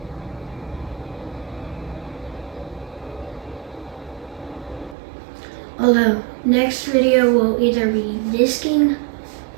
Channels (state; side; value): drops out; left; at 5.0 s